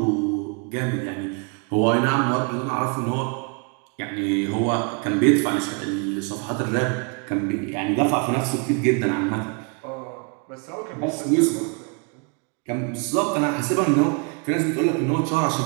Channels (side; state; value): left; quieter; 35.7 dB